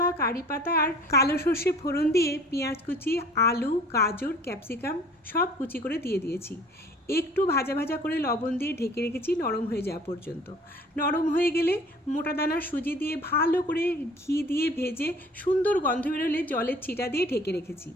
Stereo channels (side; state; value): both; normal; correlation 0.50